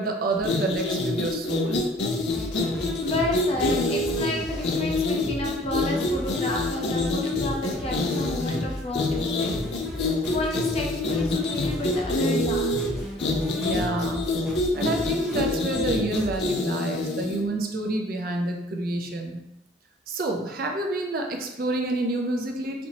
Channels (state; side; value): normal; both; correlation 0.53